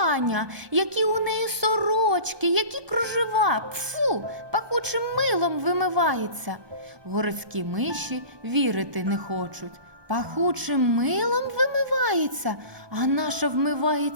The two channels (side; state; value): left; late; 1.2 ms